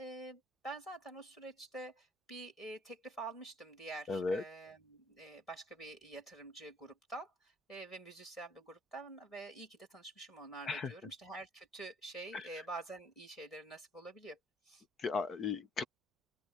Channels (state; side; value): normal; both; correlation 0.64